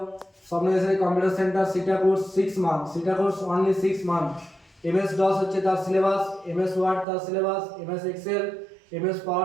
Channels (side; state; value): left; drops out; at 7.1 s